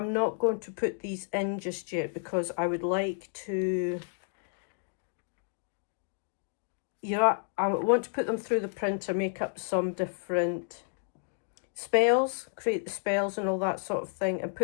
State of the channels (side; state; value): right; silent; digital silence